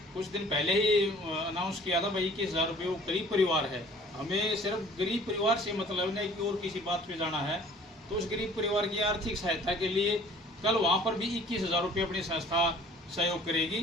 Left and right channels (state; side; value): normal; both; correlation 0.52